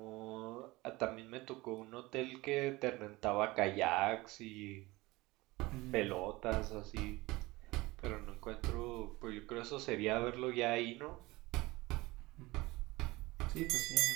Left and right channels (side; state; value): left; quieter; 21.2 dB